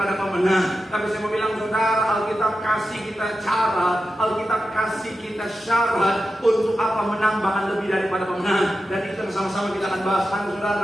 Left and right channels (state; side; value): normal; both; correlation 0.91